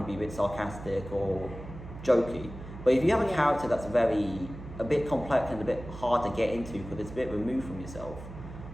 to be a bit sarcastic or jokey. But if you have a character that's a bit complex and a bit hard to get into because it's a bit removed from yourself,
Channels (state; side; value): noise; right; hum, 12 dB below the sound